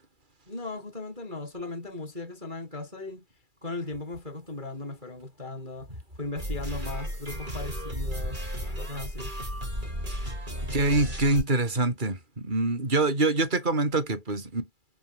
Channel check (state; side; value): late; left; 2.3 ms